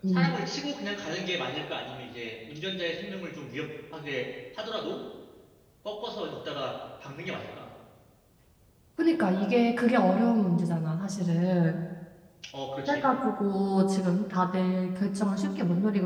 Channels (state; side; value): identical; both; correlation 1.00